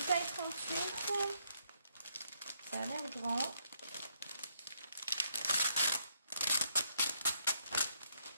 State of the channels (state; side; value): inverted; both; correlation -0.73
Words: taille 38. Ça a l'air grand.